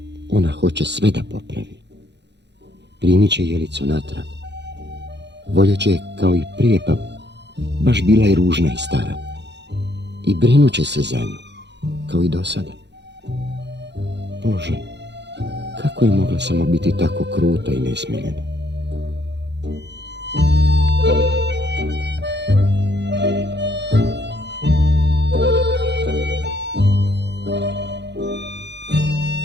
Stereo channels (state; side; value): late; left; 0.50 ms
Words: ona hoće sve da popravi. Primit će jelicu natrag. Voljet će kao i prije, pa baš bila je ružna i stara. I brinut će se za nju, kao i do sada. Bože, kako je mogla samo biti tako kruta i nesmiljena?